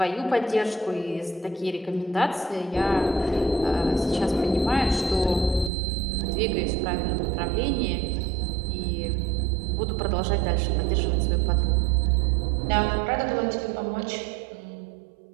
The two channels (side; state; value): left; drops out; at 5.7 s